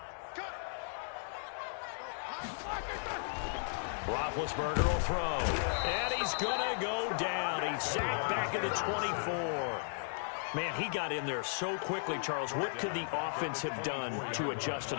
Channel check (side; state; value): right; silent; digital silence